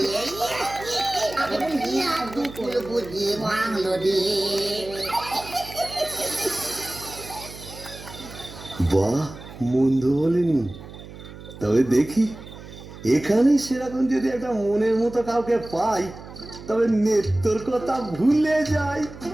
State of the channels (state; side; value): noise; right; hum, 15 dB below the sound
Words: আগুন হিয়া দুকুল বুঝি ভাঙলো দিয়ে। বাহ, মন্দ বলেনি। তবে দেখি এখানে সেরকম যদি একটা মনের মতো কাউকে পাই, তবে নেত্তর কথা ভুলে যাই।